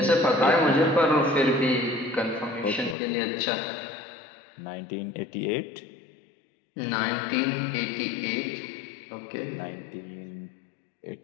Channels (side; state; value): right; drops out; at 3.0 s